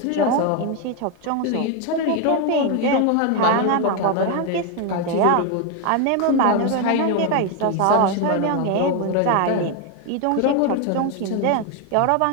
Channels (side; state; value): both; different; correlation 0.01